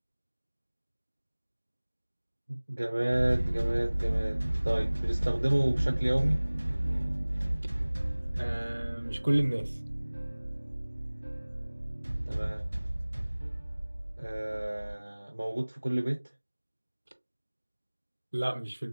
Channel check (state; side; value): inverted; both; correlation -1.00